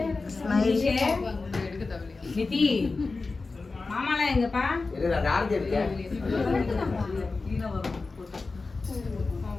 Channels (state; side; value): quieter; right; 3.8 dB